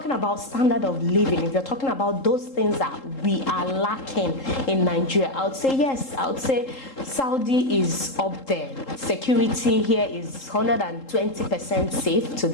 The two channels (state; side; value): late; right; 3.8 ms